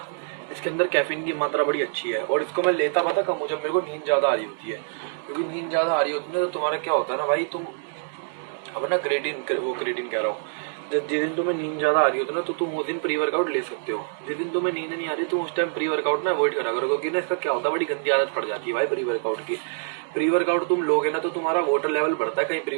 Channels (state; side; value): silent; left; digital silence